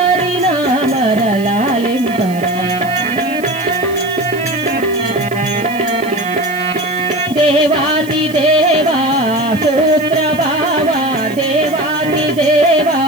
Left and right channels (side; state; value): right; noise; hiss, 20 dB below the sound